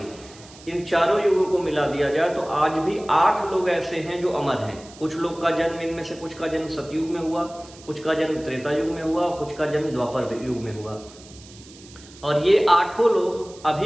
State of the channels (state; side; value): noise; right; hiss, 21 dB below the sound